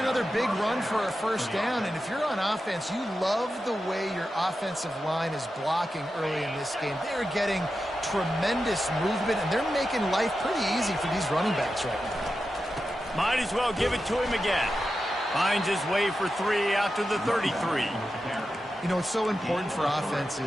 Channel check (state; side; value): normal; both; correlation 0.91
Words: big run for a first down, and if you're on offense, you love the way your offensive line is blocking early in this game. They're getting tremendous movement, and they're making life pretty easy for these running backs right now. Might as well give it to him again. Finds his way for 3 out to the 33. You know, it's so important for